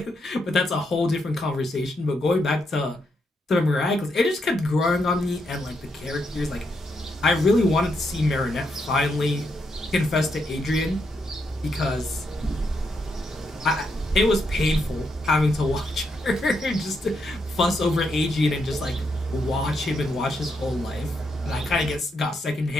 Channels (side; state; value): both; normal; correlation 0.80